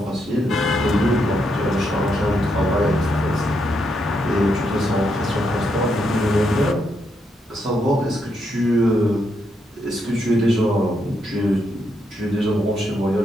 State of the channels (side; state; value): both; normal; correlation 0.79